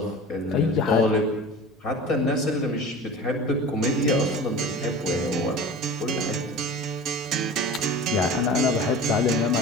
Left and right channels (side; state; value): both; normal; correlation 0.37